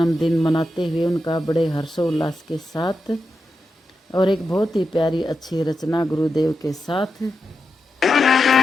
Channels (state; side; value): normal; both; correlation 0.88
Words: मनाते हुए उनका बड़े हर्षोल्लास के साथ और एक बहुत ही प्यारी अच्छी रचना गुरुदेव के साथ।